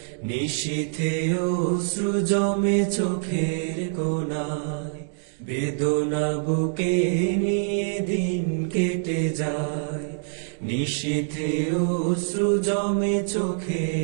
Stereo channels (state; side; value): silent; left; digital silence